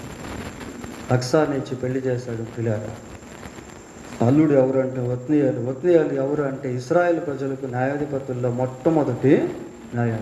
అక్సాని ఇచ్చి పెళ్లి చేశాడు. పిల్లాడు అల్లుడు ఎవరు అంటే ఒత్నీయాలు ఎవరు అంటే ఇశ్రాయేలు ప్రజలకు న్యాయాధిపతుల్లో మొట్టమొదటి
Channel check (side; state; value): both; identical; correlation 1.00